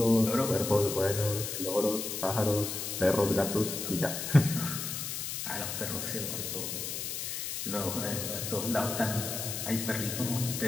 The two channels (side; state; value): left; noise; hiss, 4 dB below the sound